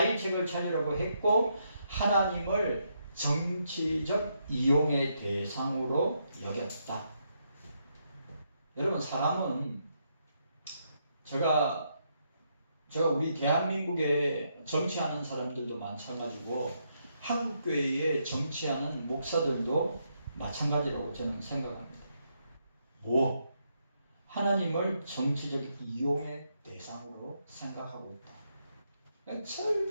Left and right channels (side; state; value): both; inverted; correlation -0.78